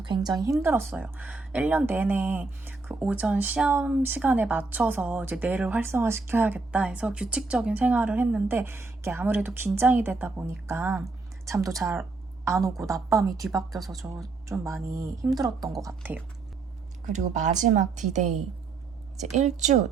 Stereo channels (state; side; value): quieter; left; 3.9 dB